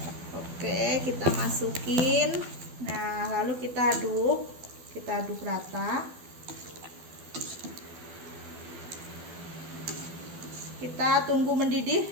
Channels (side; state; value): left; late; 12 ms